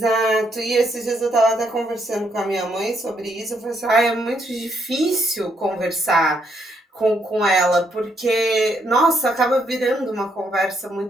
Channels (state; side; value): normal; both; correlation 0.74